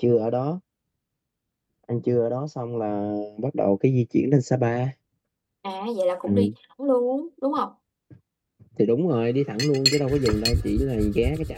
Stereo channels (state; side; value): identical; both; correlation 1.00